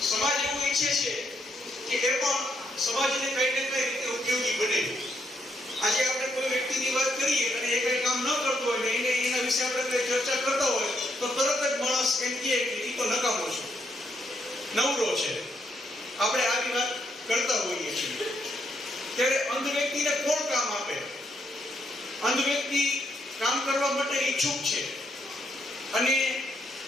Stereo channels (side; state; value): both; normal; correlation 0.76